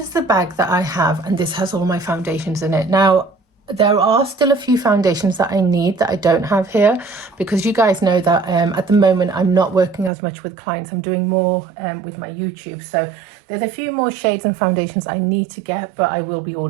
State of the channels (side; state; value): left; drops out; at 10.1 s